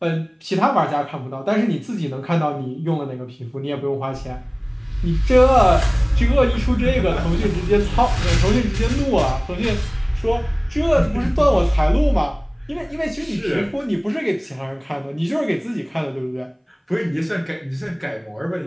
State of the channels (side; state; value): both; identical; correlation 1.00